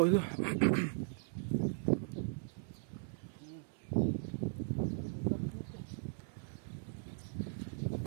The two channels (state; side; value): silent; left; 52 dB below the other